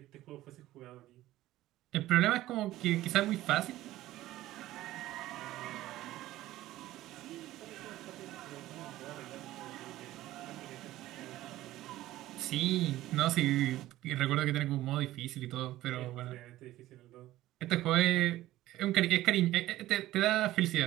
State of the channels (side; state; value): left; quieter; 15.5 dB